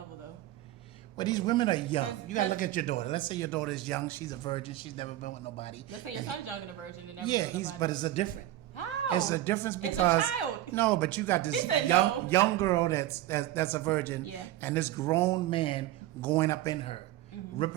though. But these women are young. 'Cause- You gotta look at your daughter. Let's say your daughter is young. She's a virgin. She's never been with nobody. Let's say your son's young and a virgin and never Yeah, with nobody. but it's a different. How? It's a difference because it's a child. No, but you got this He said young, no. young girl that's a virgin, Yeah. and this grown man going up in her, Mm-hmm.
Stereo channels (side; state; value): left; quieter; 14.3 dB